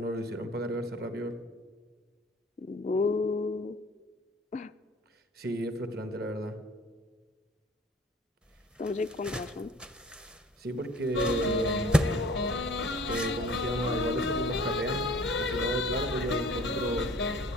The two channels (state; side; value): normal; both; correlation 0.49